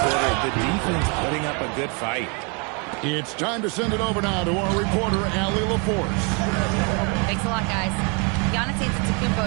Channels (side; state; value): left; quieter; 34.0 dB